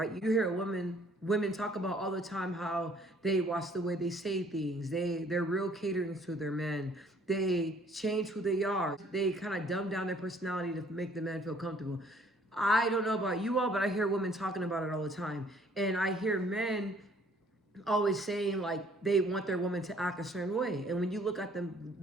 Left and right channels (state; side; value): normal; both; correlation 0.60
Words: You hear women talk about all the time how they watch the way they say things. They're real catering to their men. They change who they are. They kind of dumb down their personality to make the man feel comfortable. I don't know about you all, but I hear women talking about it all the time. And I hear men always saying like they want their woman to act a certain way. And when you look at